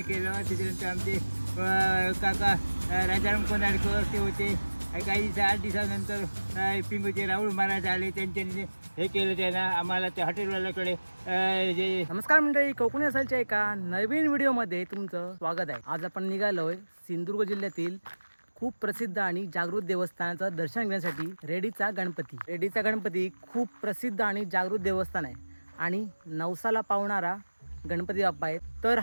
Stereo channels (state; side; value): inverted; both; correlation -1.00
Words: केलं. त्याच्यानंतर आमचे काका राजाराम कोंडाळकर ते होते. काही दिवस 8 दिवसानंतर पिंगूचे राहुल महाराज आले, त्यांच्यानी हे केलं. त्यांना आम्हाला त्या हॉटेलवाल्याकडे जे नमस्कार मंडळी, कोकणी असालच्या एका नवीन व्हिडिओमध्ये तुमचं स्वागत आहे. आज आपण निघालोय सिंधुदुर्ग जिल्ह्यातील खूप प्रसिद्ध आणि जागृत देवस्थानाचं दर्शन घेण्यासाठी. रेडीचा गणपती. रेडीचा गणपती खूप प्रसिद्ध आणि जागृत देवस्थान आहे आणि नवसाला पावणारा गणपती बाप्पा आहे. तर